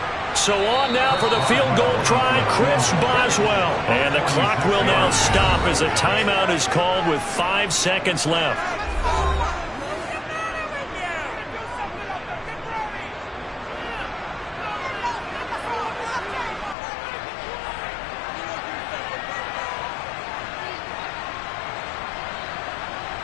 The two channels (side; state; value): right; drops out; at 16.8 s